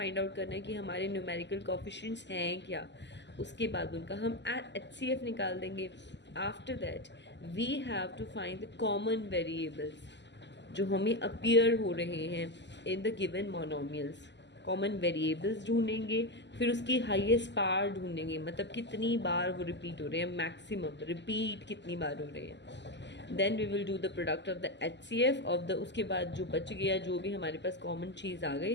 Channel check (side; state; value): right; late; 0.51 ms